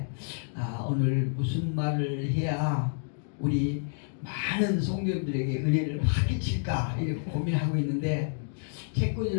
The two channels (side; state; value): right; silent; digital silence